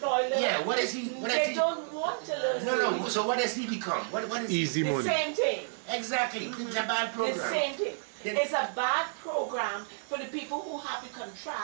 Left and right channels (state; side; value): silent; left; digital silence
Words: learn. Yeah, what is he? They don't want to learn. No. So what does he become? What is easy money? The same thing. Exactly. It's a bad program. The same thing. It's a bad program for the people who have the